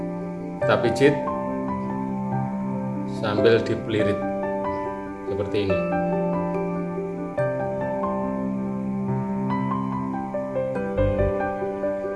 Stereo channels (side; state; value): both; identical; correlation 1.00